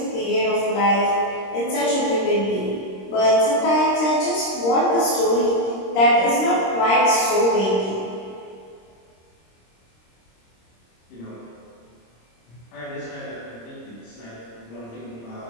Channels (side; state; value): right; late; 26 ms